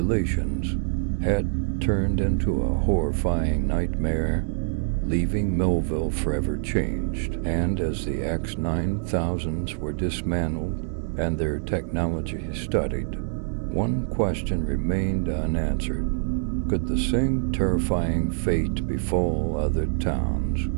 had turned into a horrifying nightmare, leaving Millville forever changed. And as the X-9000s were dismantled and their technology studied, one question remained unanswered. Could the same terrifying fate befall other towns,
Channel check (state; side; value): silent; left; digital silence